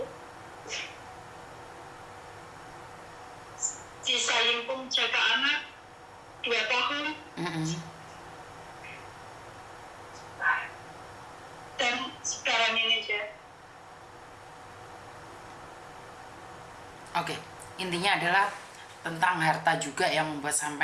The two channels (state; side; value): identical; both; correlation 1.00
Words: di Sayingpung jaga anak 2 tahun. Dan sekarang ini, Je. Oke, intinya adalah tentang harta juga yang membuat